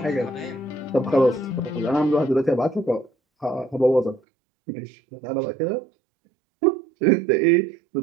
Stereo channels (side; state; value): left; drops out; at 4.2 s